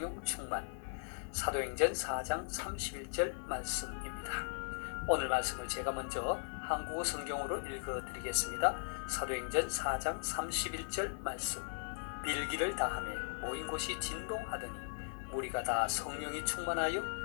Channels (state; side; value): silent; right; digital silence